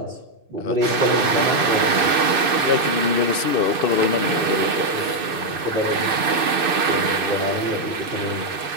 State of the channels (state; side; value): late; left; 2.6 ms